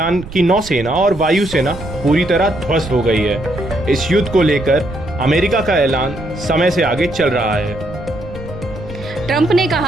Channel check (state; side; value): noise; right; rumble, 14 dB below the sound